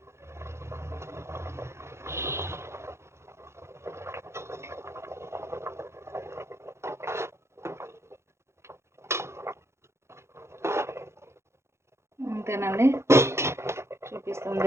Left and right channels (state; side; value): late; left; 0.13 ms